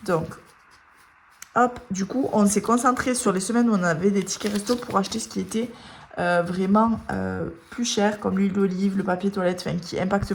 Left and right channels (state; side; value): identical; both; correlation 1.00